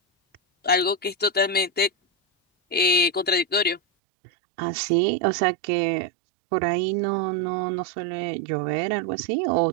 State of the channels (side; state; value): left; drops out; at 3.8 s